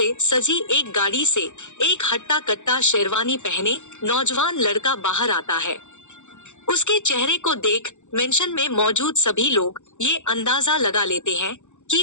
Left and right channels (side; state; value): right; late; 0.84 ms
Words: सजी एक गाड़ी से एक हट्टा कट्टा शेरवानी पहने नौजवान लड़का बाहर आता है। उसके चेहरे को देख मेंशन में मौजूद सभी लोग ये अंदाजा लगा लेते हैं कि